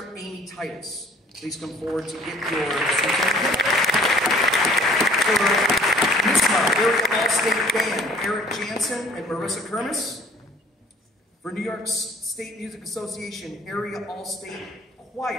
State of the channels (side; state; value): both; normal; correlation 0.53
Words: Amy Titus. Please come forward to get your certificate. For NISMA, Area All-State Band, Eric Jansen and Marissa Kermis. For New York State Music Association, Area All-State